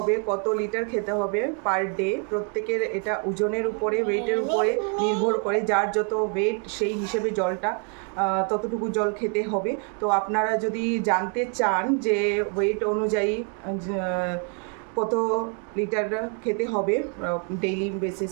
কত লিটার খেতে হবে পার ডে, প্রত্যেকের এটা ওজনের উপরে, ওয়েটের উপরে নির্ভর করে, যার যত ওয়েট সেই হিসেবে জলটা ততটুকু জল খেতে হবে। তো আপনারা যদি জানতে চান যে ওয়েট অনুযায়ী কত লিটার খেতে হবে ডেইলি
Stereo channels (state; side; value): quieter; left; 39.4 dB